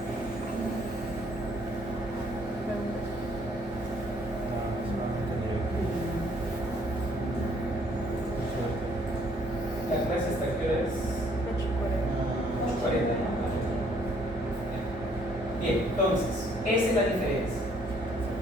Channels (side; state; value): both; normal; correlation 0.64